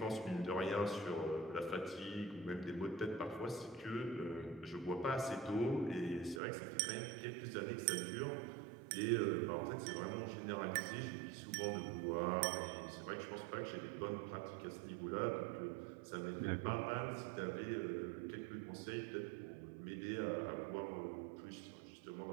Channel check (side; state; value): left; drops out; at 6.4 s